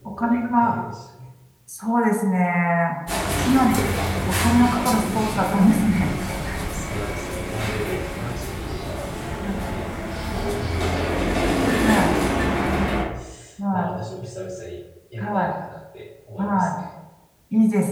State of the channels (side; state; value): both; identical; correlation 1.00